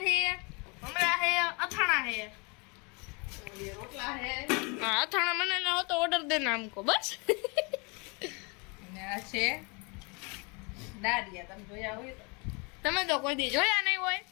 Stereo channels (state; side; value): quieter; right; 31.3 dB